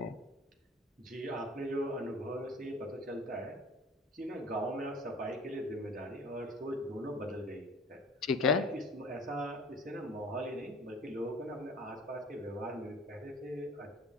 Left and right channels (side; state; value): both; normal; correlation 0.44